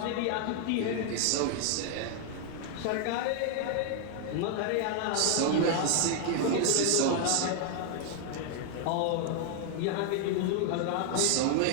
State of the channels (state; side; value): different; both; correlation 0.00